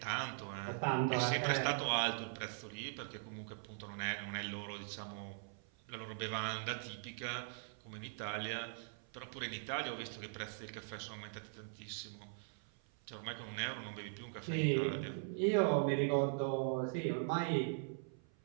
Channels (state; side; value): silent; left; 50 dB below the other